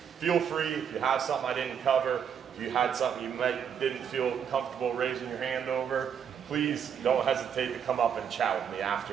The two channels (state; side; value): quieter; left; 7.9 dB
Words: feel free, if you have something I didn't cover, if you had something you didn't feel comfortable raising your hand over, please don't hesitate to come up and chat with me